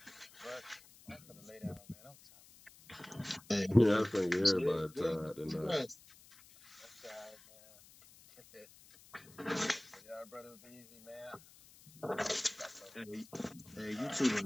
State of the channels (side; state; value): left; noise; hiss, 23 dB below the sound